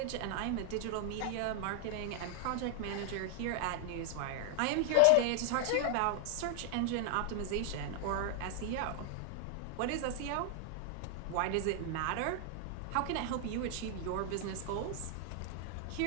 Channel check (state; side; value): different; both; correlation 0.00